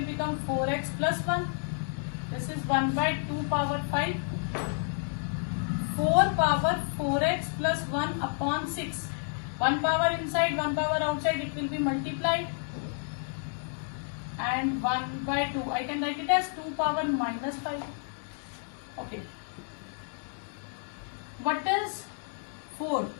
become 4x plus 1. This is 1 by 2 power 5. 4 power 4x plus 1 upon 6. 1 power inside, 1 power outside, it will be multiplied. And 1 by 2, I can write it as 2 power minus 5. Okay. What is 4?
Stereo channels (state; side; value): silent; right; 58 dB below the other